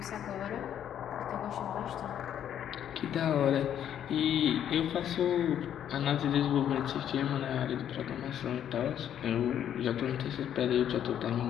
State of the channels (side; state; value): right; quieter; 9.9 dB